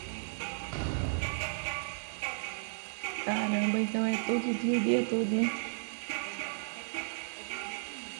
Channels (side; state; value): left; silent; digital silence